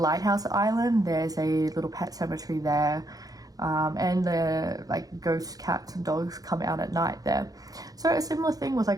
island, there's a little pet cemetery there, and the like ghost cats and dogs come out at night there. So a similar thing with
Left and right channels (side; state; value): left; late; 0.18 ms